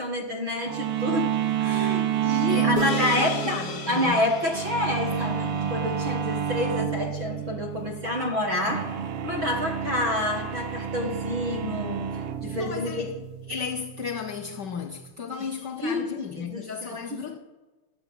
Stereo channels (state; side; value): late; left; 6.2 ms